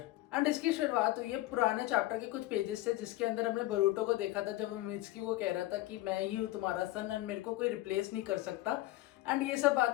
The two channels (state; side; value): quieter; right; 17.1 dB